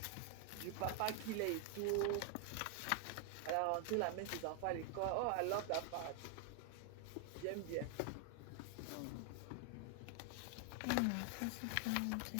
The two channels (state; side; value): different; both; correlation 0.00